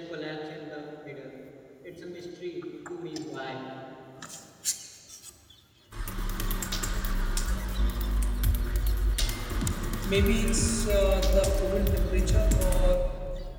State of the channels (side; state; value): both; identical; correlation 1.00